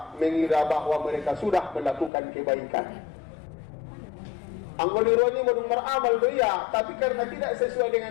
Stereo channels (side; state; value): right; drops out; at 2.1 s